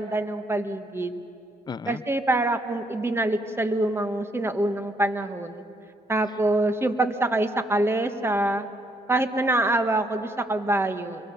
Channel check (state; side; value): normal; both; correlation 0.72